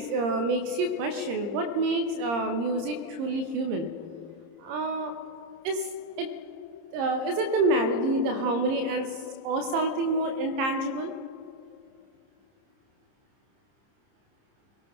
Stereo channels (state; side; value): late; left; 30 ms